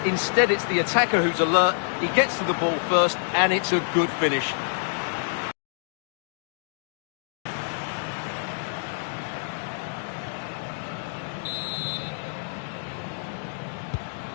Instead, it's the attacker who's alert. He gets to the ball first, and it's a good finish.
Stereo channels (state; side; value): silent; right; digital silence